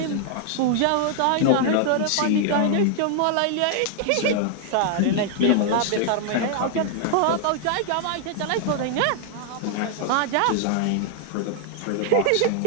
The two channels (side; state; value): both; different; correlation 0.00